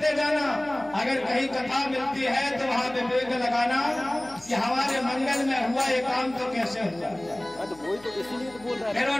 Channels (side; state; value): left; noise; hum, 25 dB below the sound